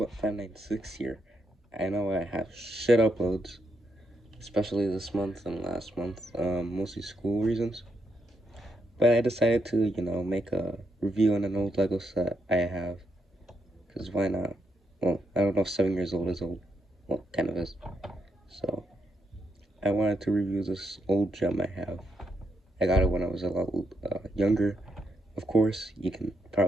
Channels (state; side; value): normal; both; correlation 0.80